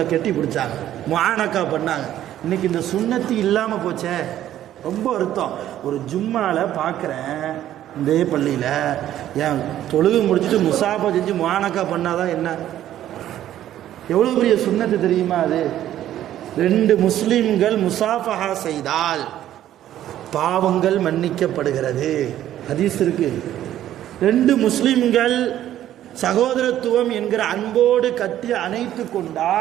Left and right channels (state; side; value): quieter; left; 12.2 dB